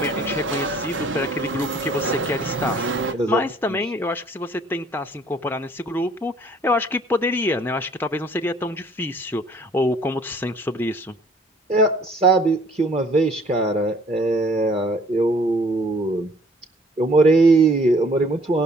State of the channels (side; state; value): both; normal; correlation 0.57